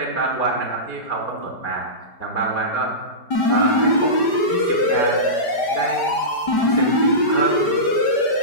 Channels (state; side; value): late; right; 5.1 ms